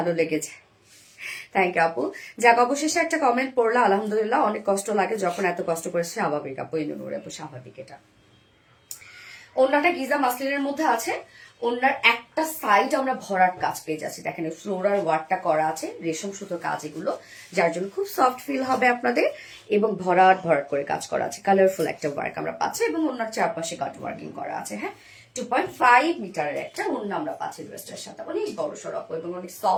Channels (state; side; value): identical; both; correlation 1.00